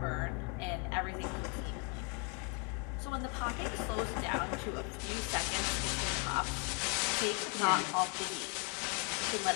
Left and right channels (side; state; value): right; quieter; 33.7 dB